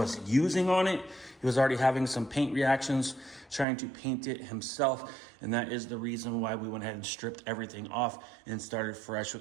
using on it. He was already having some paint reactions trying to paint it himself, and that is the reason why we went ahead and stripped everything off and started fresh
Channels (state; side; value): drops out; left; at 3.7 s